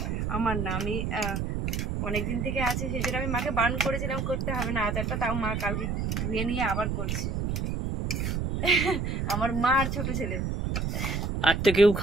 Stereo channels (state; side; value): noise; right; rumble, 1 dB below the sound